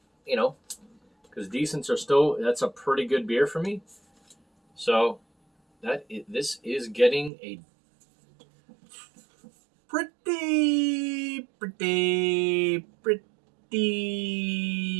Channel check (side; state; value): left; drops out; at 7.3 s